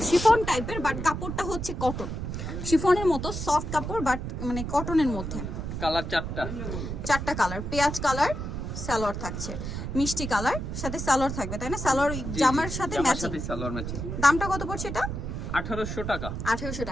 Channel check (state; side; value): noise; right; rumble, 5 dB below the sound